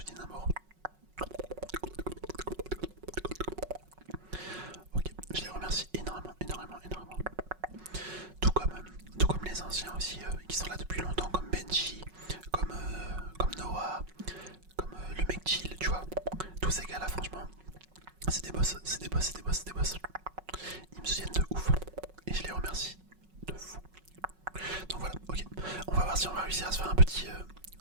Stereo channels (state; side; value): late; left; 5.4 ms